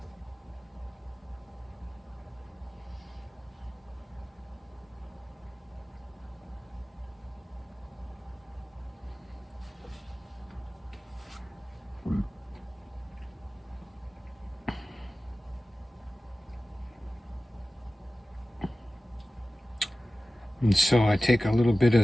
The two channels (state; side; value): normal; both; correlation 0.96